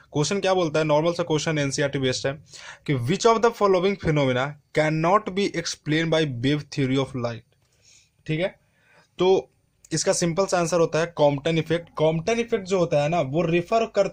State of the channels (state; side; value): identical; both; correlation 1.00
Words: क्वेश्चन क्या बोलता है, नॉर्मल सा क्वेश्चन एनसीईआरटी बेस्ड है कि which of the following phenomena can not be explain by wave theory of light. ठीक है, तो इसका सिंपल सा आंसर होता है कॉम्पटन इफेक्ट। कॉम्पटन इफेक्ट जो होता है ना, वो रिफर